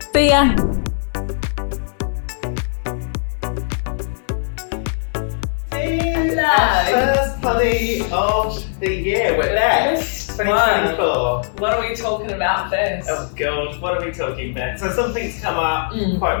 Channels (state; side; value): silent; right; 60 dB below the other